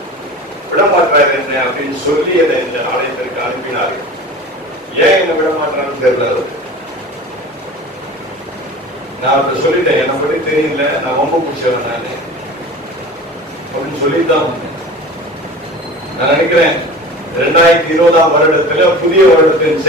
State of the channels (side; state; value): both; normal; correlation 0.37